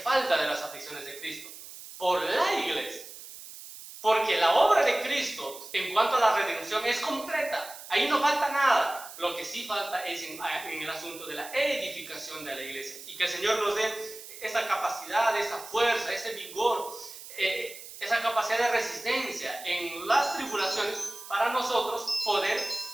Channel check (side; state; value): right; noise; hiss, 14 dB below the sound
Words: de las aflicciones de Cristo por la iglesia. Porque la obra de Cristo en cuanto a la redención es completa. Ahí no falta nada. Lo que sí falta es en el asunto de la edificación de la iglesia. Y que el Señor nos dé esa capacidad, esa fuerza, ese vigor, esa capacidad de resistencia en las tribulaciones para nosotros poder